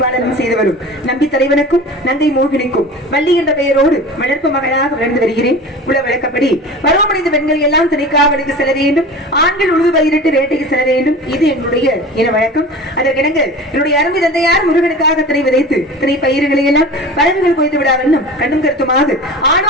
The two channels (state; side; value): normal; both; correlation 0.36